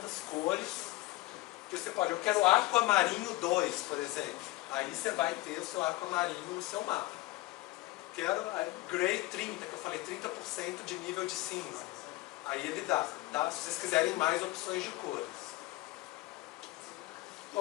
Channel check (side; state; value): right; quieter; 19.7 dB